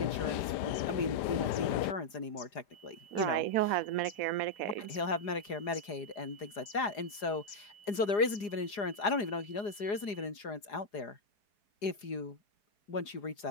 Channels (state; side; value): late; right; 4.9 ms